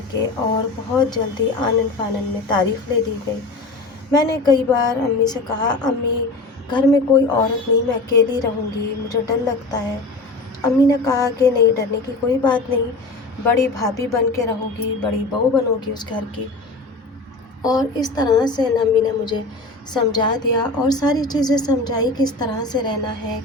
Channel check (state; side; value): quieter; right; 3.2 dB